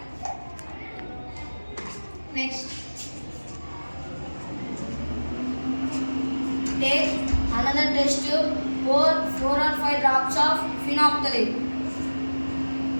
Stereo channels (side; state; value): both; inverted; correlation -1.00